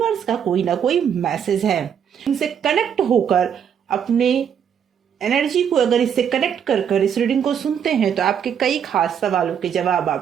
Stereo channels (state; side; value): quieter; left; 8.2 dB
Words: का कोई ना कोई मैसेज है। इनसे कनेक्ट होकर अपने एनर्जी को अगर इससे कनेक्ट कर कर इस रीडिंग को सुनते हैं तो आपके कई खास सवालों के जवाब